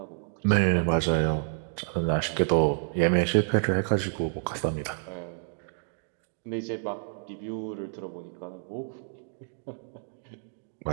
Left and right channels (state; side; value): silent; left; digital silence